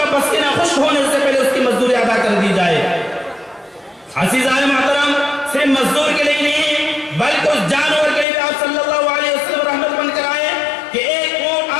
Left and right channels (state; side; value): drops out; right; at 8.2 s